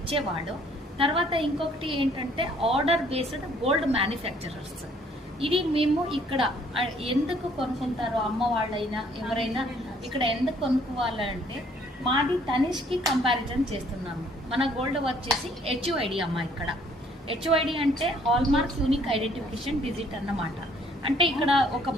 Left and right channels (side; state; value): both; normal; correlation 0.61